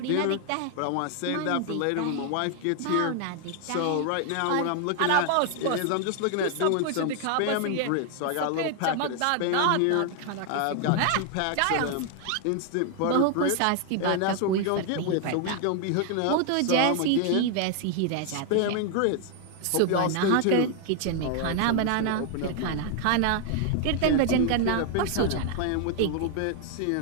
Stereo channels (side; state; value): both; different; correlation 0.00